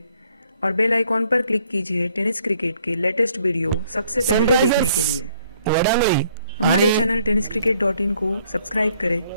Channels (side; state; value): both; inverted; correlation -0.66